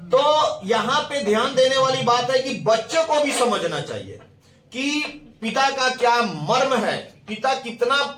तो यहां पे ध्यान देने वाली बात है कि बच्चों को भी समझना चाहिए कि पिता का क्या मर्म है, पिता कितना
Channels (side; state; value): both; identical; correlation 1.00